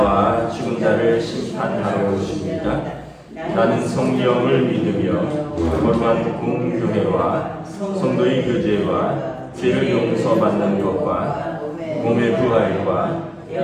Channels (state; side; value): identical; both; correlation 1.00